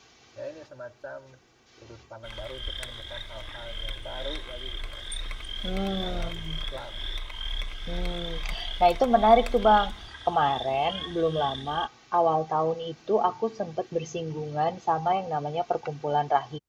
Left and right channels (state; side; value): identical; both; correlation 1.00